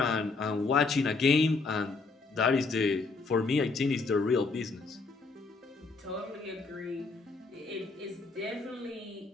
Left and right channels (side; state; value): right; quieter; 4.0 dB